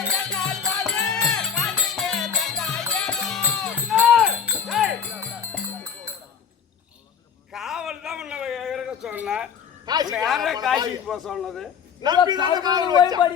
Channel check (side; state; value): right; quieter; 7.1 dB